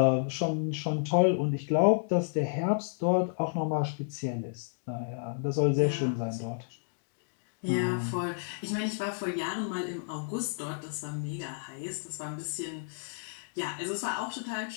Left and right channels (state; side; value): silent; right; digital silence